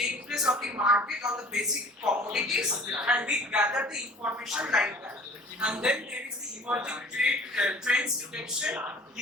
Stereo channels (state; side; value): normal; both; correlation 0.47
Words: place on the market on the basic commodities, and we gather the information like that. And then there is the emerging trends detection,